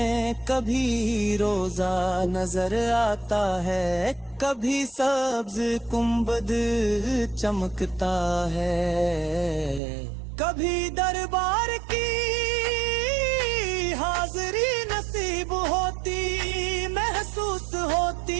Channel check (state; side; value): drops out; left; at 9.8 s